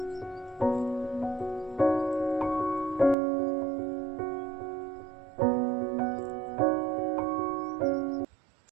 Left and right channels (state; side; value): drops out; left; at 3.2 s